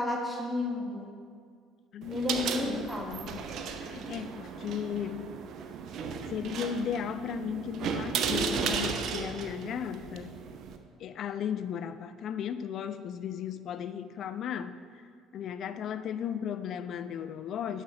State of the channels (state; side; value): normal; both; correlation 0.54